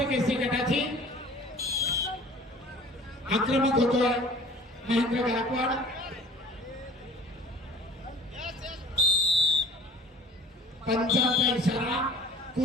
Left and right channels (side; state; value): both; normal; correlation 0.47